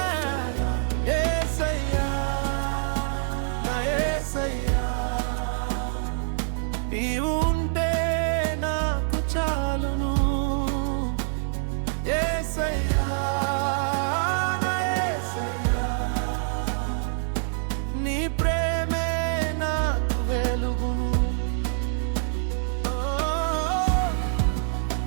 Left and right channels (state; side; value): silent; left; 61 dB below the other